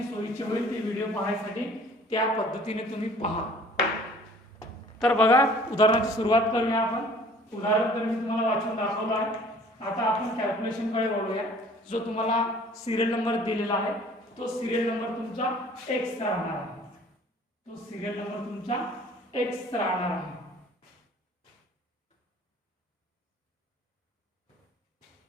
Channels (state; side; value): normal; both; correlation 0.52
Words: सोयीचे होईल ते व्हिडिओ पाहण्यासाठी त्या पद्धतीने तुम्ही पहा। तर बघा, उदाहरणाची सुरुवात करूया आपण। उदाहरण तर मी तुम्हाला वाचून दाखवलं आहे. आता आपण कॅल्क्युलेशनकडे वळूया. जो तुम्हाला सिरियल नंबर दिलेला आहे तो सिरियल नंबर तुमचा एक्स राहणार आहे. तो सिरियल नंबर तुमचा एक्स राहणार आहे.